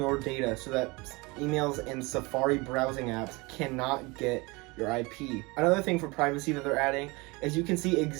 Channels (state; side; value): quieter; left; 25.3 dB